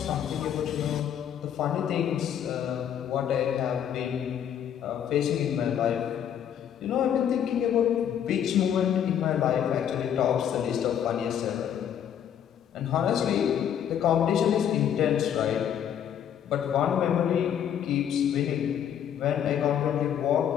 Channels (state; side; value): quieter; right; 9.4 dB